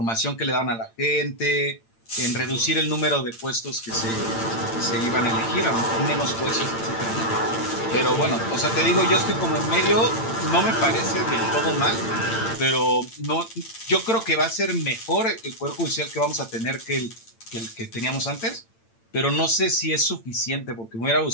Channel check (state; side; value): late; right; 8.9 ms